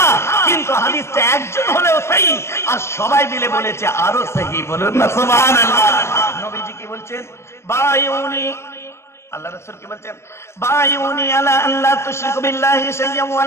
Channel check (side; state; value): right; late; 0.13 ms